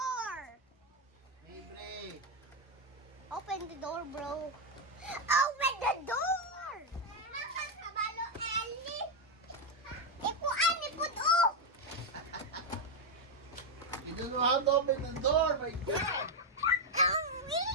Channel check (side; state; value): both; normal; correlation 0.03